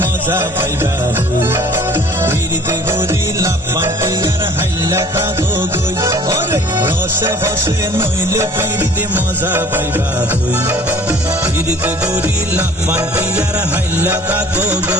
মজা পাইবা হই পিরিতে গরি লাপাতে আর হাইলা তাগো গই ওরে রসে হসে নইলে পিরিতে মজা পাইবা হই পিরিতে গরি লাপাতে আর হাইলা তাগো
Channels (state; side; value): normal; both; correlation 0.51